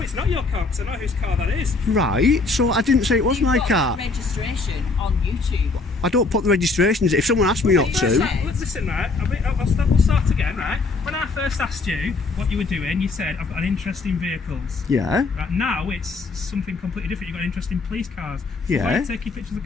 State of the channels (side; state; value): right; quieter; 3.8 dB